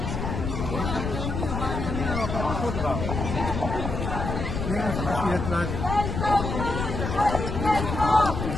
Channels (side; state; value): left; noise; rumble, 3 dB below the sound